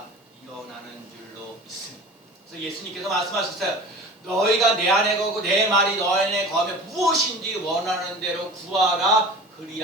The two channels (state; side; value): normal; both; correlation 0.38